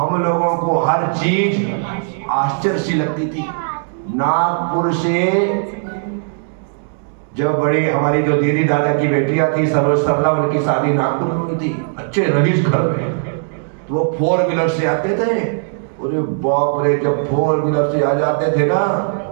लोगों को हर चीज आश्चर्य सी लगती थी। नागपुर से जब बड़ी हमारी जो दीदी दादा की बेटियां थी सरोज सरला, उनकी शादी नागपुर में हुई थी, अच्छे रईस घर में, तो वो 4 व्हीलर से आते थे। अरे बाप रे, जब 4 व्हीलर से आ जाते थे ना,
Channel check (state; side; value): silent; left; digital silence